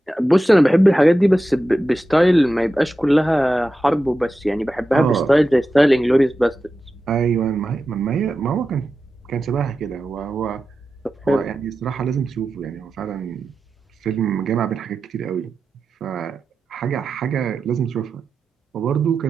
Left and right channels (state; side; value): normal; both; correlation 0.92